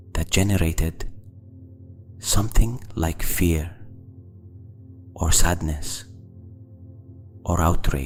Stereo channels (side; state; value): both; identical; correlation 1.00